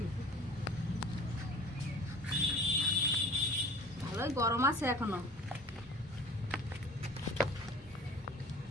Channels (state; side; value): normal; both; correlation 0.44